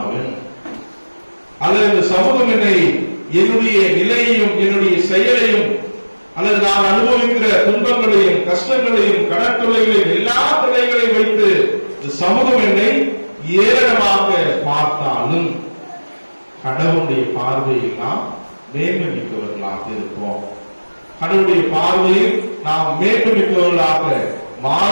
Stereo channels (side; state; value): both; inverted; correlation -1.00